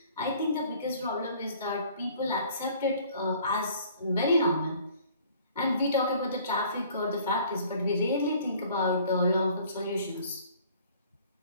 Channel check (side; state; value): both; inverted; correlation -0.54